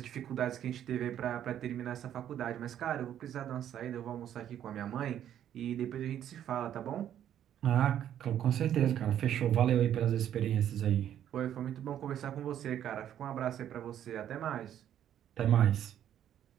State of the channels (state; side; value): quieter; left; 10.5 dB